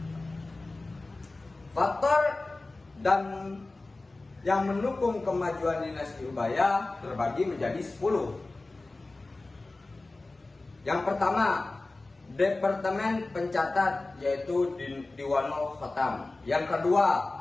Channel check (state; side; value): quieter; right; 3.2 dB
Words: Faktor dan yang mendukung kemajuan dinasti Umayyah terbagi menjadi 10. Yang pertama, Departemen Pencatat, yaitu Diwanul Khatam. Yang kedua,